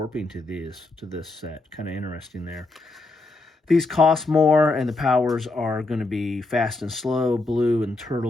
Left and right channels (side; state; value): right; quieter; 3.2 dB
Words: to this set. Kind of interesting there. These cost more, and the powers are going to be fast and slow. Blue and